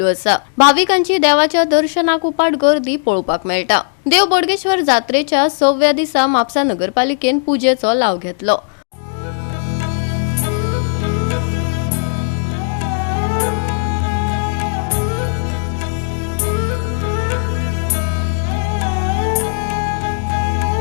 असा। भाविकांची देवाच्या दर्शनाक उपाट गर्दी पळोवपाक मेळटा। देव बोडगेश्वर जात्रेच्या 6व्या दिसा म्हापसा नगरपालिकेन पूजेचो लाव घेतलो।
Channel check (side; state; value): right; silent; digital silence